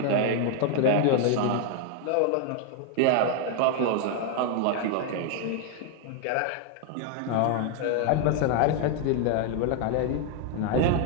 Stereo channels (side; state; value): both; different; correlation 0.00